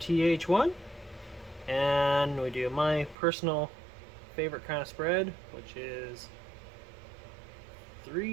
and we do my personal favorite kind of spread, which is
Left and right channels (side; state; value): left; drops out; at 3.2 s